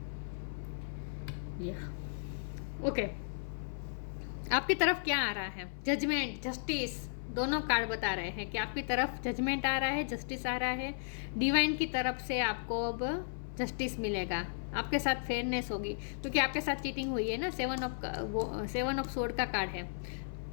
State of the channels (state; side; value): silent; right; 54 dB below the other